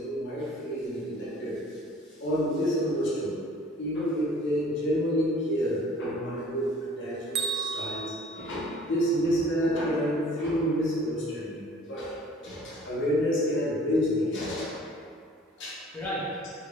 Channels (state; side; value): normal; both; correlation 0.50